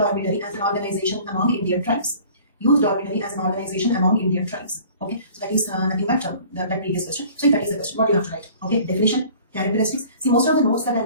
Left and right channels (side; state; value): both; inverted; correlation -0.48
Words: as an organization among Indian tribes. Youth dormitory as an organization among Indian tribes. Okay, so that is nothing but that previous question. So if that is the question, what do you have to write? Okay, definition, characteristics. See, most of the notes that I